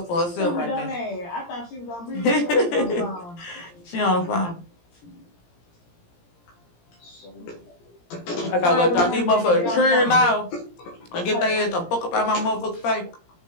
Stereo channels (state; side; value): late; right; 17 ms